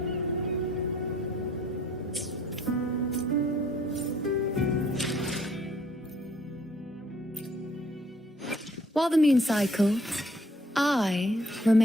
While the moon cycles, I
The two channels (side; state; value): both; normal; correlation 0.62